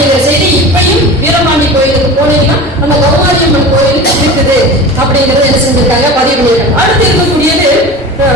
செய்தி இப்பயும் வீரபாண்டி கோயிலுக்கு போனீங்கன்னா அந்த கௌமாரி அம்மன் கோயிலுக்கு இருக்குது அப்படிங்கறத என்ன செஞ்சிருக்காங்க, பதிவு பண்ணியிருக்காங்க. அடுத்து இருக்கக்கூடியது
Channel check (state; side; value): normal; both; correlation 0.33